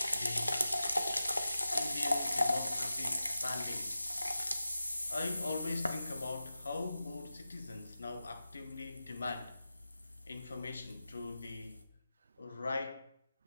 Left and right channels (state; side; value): inverted; both; correlation -0.93